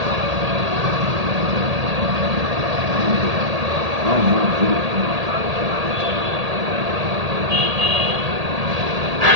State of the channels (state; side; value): late; left; 1.8 ms